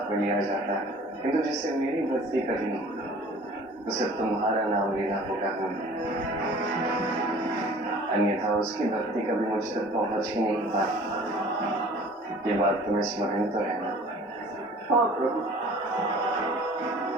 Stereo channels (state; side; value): normal; both; correlation 0.47